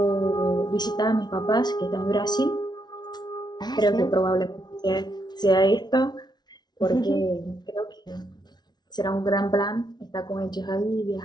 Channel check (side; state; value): right; late; 0.20 ms